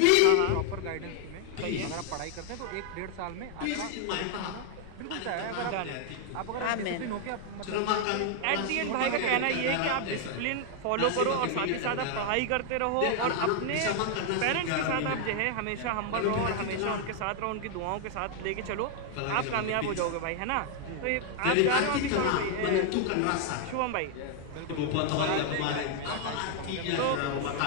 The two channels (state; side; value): different; both; correlation 0.00